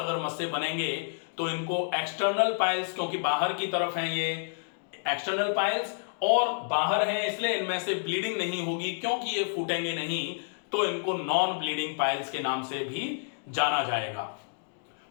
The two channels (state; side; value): silent; right; digital silence